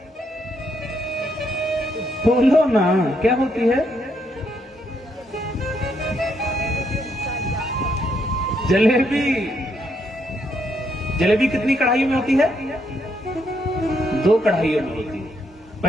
बोलो ना, क्या होती है? जलेबी। जलेबी कितनी कढ़ाइयों में होती है? 2 कढ़ाइयों में होती है।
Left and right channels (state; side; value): normal; both; correlation 0.75